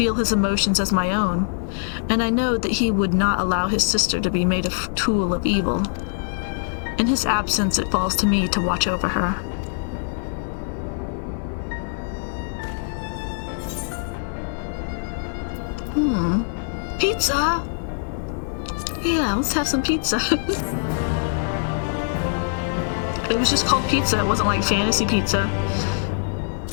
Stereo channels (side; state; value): right; silent; 58 dB below the other